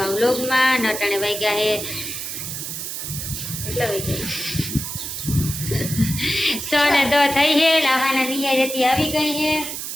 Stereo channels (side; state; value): right; noise; hiss, 6 dB below the sound